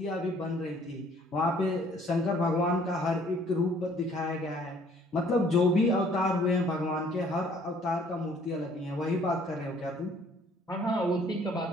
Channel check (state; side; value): normal; both; correlation 0.59